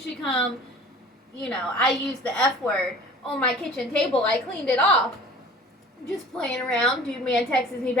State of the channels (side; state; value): both; normal; correlation 0.45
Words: should come, I used the F word on my kitchen table. I cleaned it off. Just playing around. Dude Man texts me